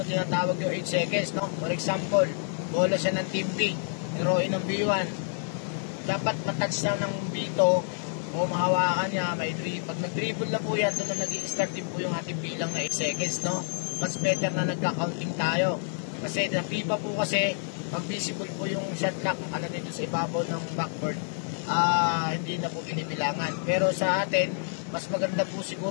tinatawag yung 8 seconds, no? For example, bola siya ng team B, heroin ng B1, dapat matouch lang ng B2 o mahawakan niya, may dribble. Pag nag-dribble na po yan, doon na nag-i-start din po yung ating bilang na 8 seconds, no? Mas better na nagka-counting tayo kasi na FIFA po kasi pag visible po yung shot clock dito sa ibabaw ng backboard, hindi na po binibilangan. Pero sa atin, mas maganda po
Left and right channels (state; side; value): silent; right; digital silence